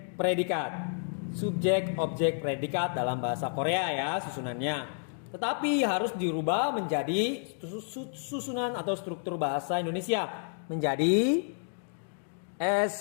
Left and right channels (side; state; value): right; silent; 57 dB below the other